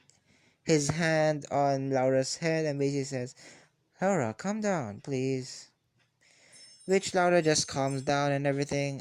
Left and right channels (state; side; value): identical; both; correlation 1.00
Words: his hand on Laura's head and basically says, Laura, calm down, please. Which Laura just calms down and